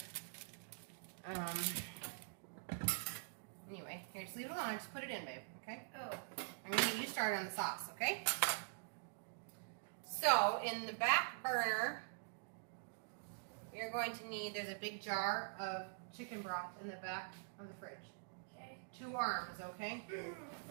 Anyway, here, just leave it alone. Just put it in, babe. Okay. Oh. I'm gonna get you started on the sauce. Okay. So in the back burner, you're going to need. There's a big jar of chicken broth in the back of the fridge. Okay. 2 arms. Okay.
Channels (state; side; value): silent; left; digital silence